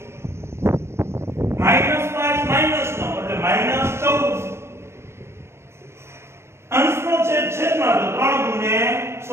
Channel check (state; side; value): late; left; 0.13 ms